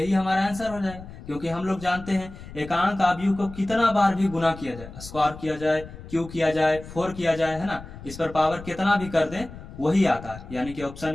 हमारा आंसर हो जाएगा। क्योंकि हम लोग जानते हैं एकांक आव्यूह को कितना बार भी गुना किया जाए, स्क्वायर किया जाए, क्यूब किया जाए, 4 किया जाए, है ना, इस पर पावर कितना भी कर दें वही आता है, यानी कि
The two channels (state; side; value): noise; left; rumble, 15 dB below the sound